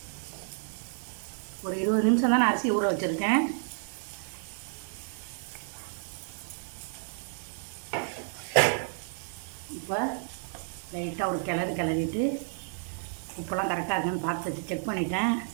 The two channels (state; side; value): silent; left; digital silence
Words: ஒரு 20 நிமிஷம் தான் நான் அரிசி ஊற வச்சுருக்கேன். இப்போ லைட்டாக ஒரு கிளறிட்டு உப்பெல்லாம் கரெக்டாக இருக்கான்னு பார்த்து செக் பண்ணிட்டேன்.